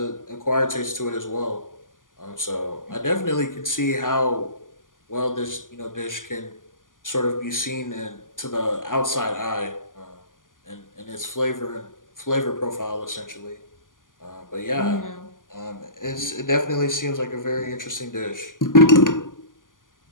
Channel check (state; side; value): late; right; 0.88 ms